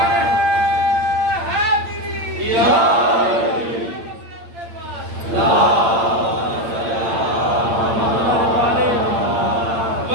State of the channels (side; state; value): left; late; 8.7 ms